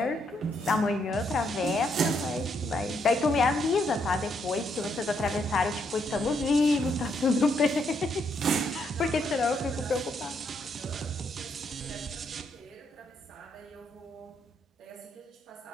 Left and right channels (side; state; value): both; normal; correlation 0.75